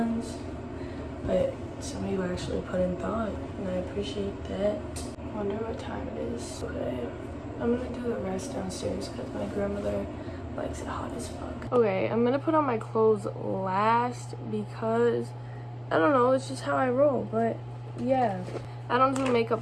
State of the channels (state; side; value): identical; both; correlation 1.00